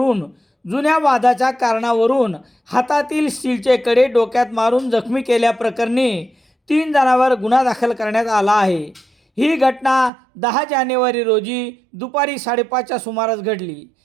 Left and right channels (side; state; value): left; drops out; at 10.1 s